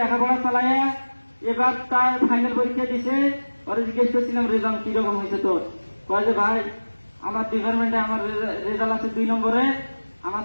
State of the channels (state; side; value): inverted; both; correlation -1.00